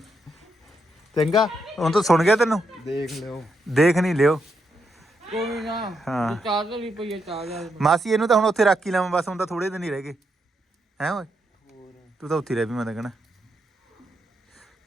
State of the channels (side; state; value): both; normal; correlation 0.81